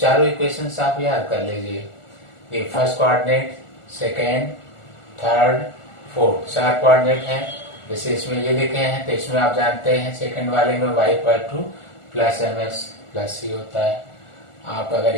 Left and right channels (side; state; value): right; late; 1.4 ms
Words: इक्वेशंस आप याद कर लीजिए, ये first coordinate, second, third, fourth 4 coordinate हैं। जैसे इसमें ये लिखे हैं तो इसमें आप जानते हैं सेकंड वाले में y equal two plus mx plus c होता है। आप अगर